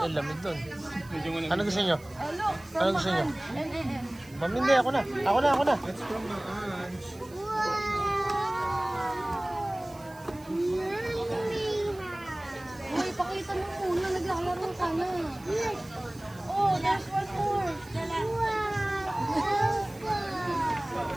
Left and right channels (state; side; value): noise; right; hiss, 24 dB below the sound